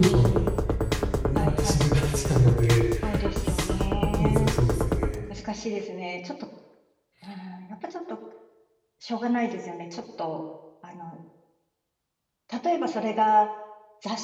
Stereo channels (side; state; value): both; identical; correlation 1.00